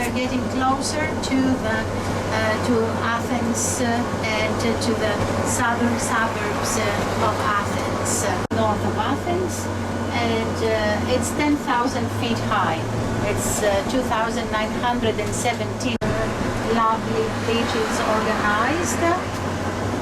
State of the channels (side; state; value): both; identical; correlation 1.00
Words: getting closer to Athens and to the southern suburbs of Athens, north of Athens, and it's 10,000 feet high. It's 2,917 lovely beaches organized,